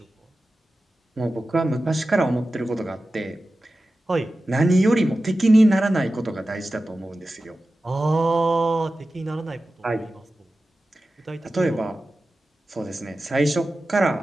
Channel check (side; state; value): both; normal; correlation 0.94